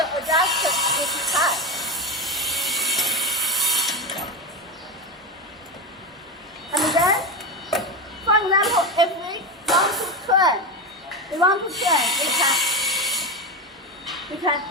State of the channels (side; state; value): both; normal; correlation 0.17